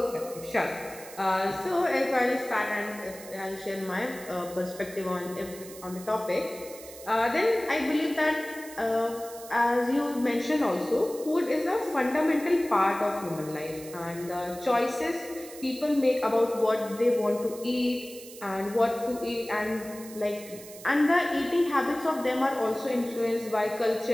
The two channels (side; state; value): right; noise; hiss, 16 dB below the sound